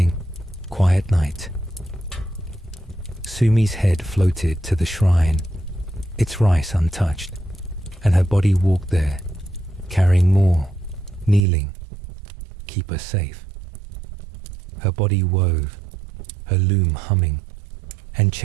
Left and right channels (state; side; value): drops out; left; at 11.5 s